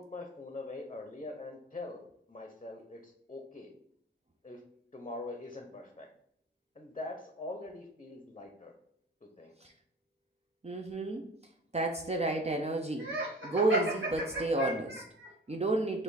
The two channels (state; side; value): normal; both; correlation 0.41